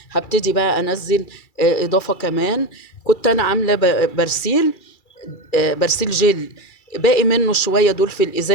هبتدي بقى انزل اضافه كمان. كنت انا عامله برسيل جل، باقي منه شويه دول في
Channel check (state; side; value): late; right; 2.3 ms